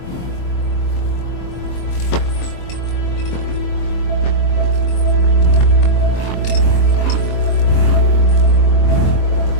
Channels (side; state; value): right; late; 23 ms